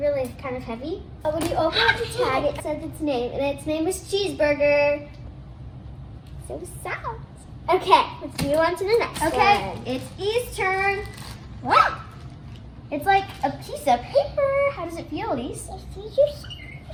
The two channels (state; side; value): identical; both; correlation 1.00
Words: kind of heavy. But when you open up the tag, it says its name, and its name is Cheeseburger. So sad. Okay, let's move on to the next one. Okay, it's E's turn. What? It's like a piece of paper. How does it feel, Elise?